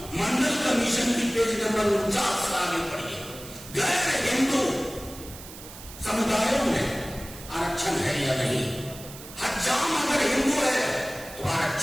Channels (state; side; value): noise; right; hiss, 15 dB below the sound